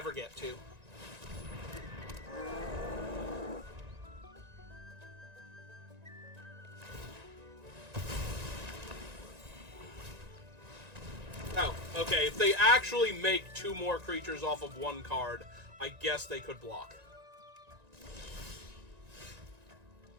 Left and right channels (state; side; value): late; left; 1.9 ms